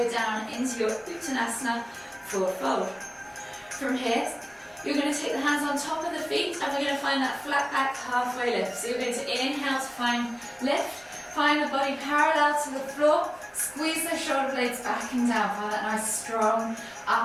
down into your Uttanasana forward fold. From here, you're going to take the hands on top of the feet and we're going to find that flat back halfway lift. So you're going to inhale to find lift, find the body parallel to the floor, squeeze the shoulder blades back and down, find that nice strong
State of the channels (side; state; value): both; identical; correlation 1.00